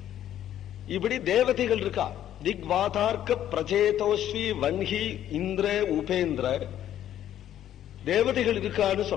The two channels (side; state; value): right; quieter; 11.4 dB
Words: இப்படி தேவதைகள் இருக்கா. திக்வாதார்க்க பிரச்சேதோஸ்வி வன்ஹி இந்திர உபேந்திர தேவதைகள் இருக்கான்னு